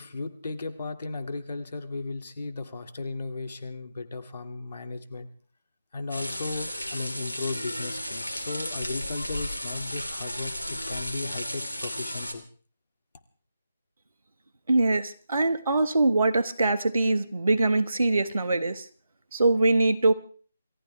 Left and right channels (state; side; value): inverted; both; correlation -0.88